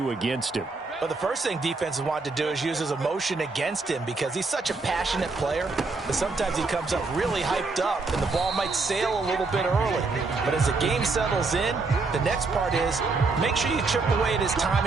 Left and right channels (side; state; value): left; quieter; 3.9 dB